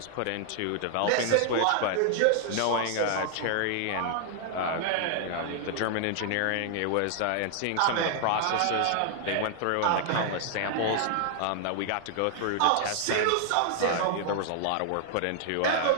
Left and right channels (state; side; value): different; both; correlation 0.00